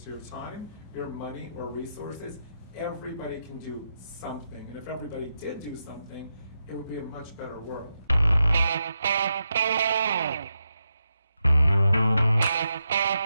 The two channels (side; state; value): both; inverted; correlation -0.85